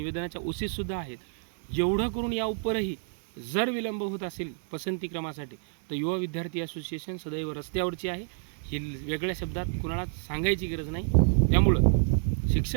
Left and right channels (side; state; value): left; silent; digital silence